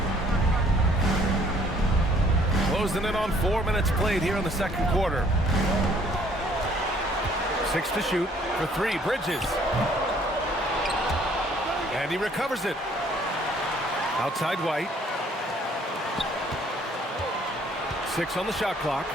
Closing in on 4 minutes played here in the second quarter. 6 to shoot for 3. Bridges. And he recovers it. Outside White. 6 on the shot clock.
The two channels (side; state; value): both; normal; correlation 0.60